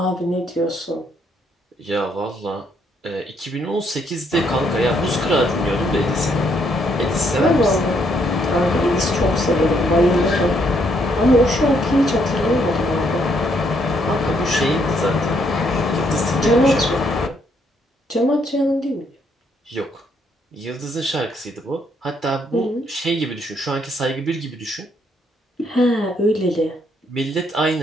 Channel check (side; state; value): both; normal; correlation 0.72